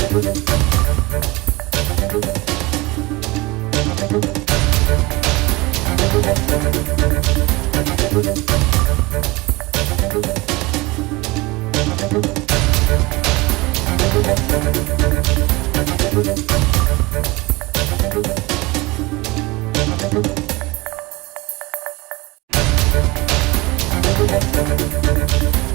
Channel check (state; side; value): quieter; left; 22.9 dB